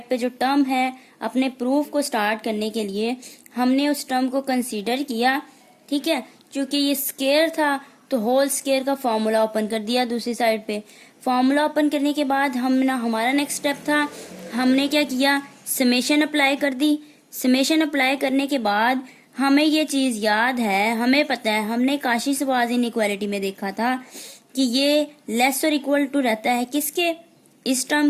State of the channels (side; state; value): both; identical; correlation 1.00